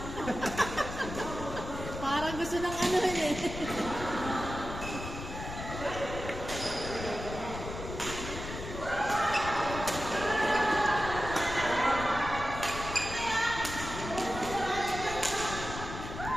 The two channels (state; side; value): noise; left; rumble, 8 dB below the sound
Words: Parang gusto ng ano eh.